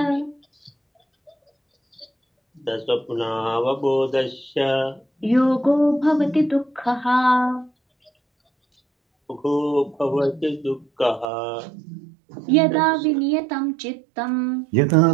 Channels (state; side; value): drops out; left; at 11.2 s